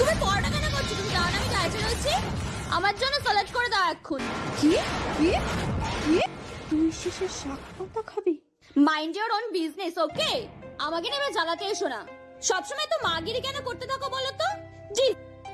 পরোটা কেন করছো? তুমি জানো না আমি ডায়েটে রয়েছি? আমার জন্য স্যালাড করে দাও এখন। কি কি কি? তুই শেষে শাক পাতা খাবি? মাইন্ড ইওর ওন বিজনেস, ওকে? আমাকে নেবে জ্বালাতে এসো না। সবসময় তো মাগিরি কেন করতে থাকো বলো তো? জি,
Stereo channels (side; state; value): both; identical; correlation 1.00